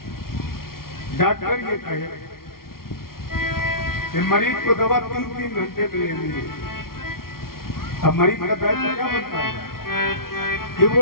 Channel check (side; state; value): right; late; 0.93 ms